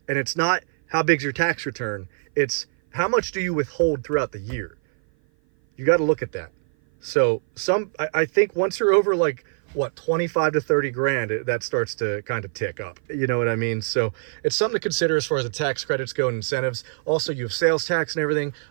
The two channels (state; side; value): silent; left; 56 dB below the other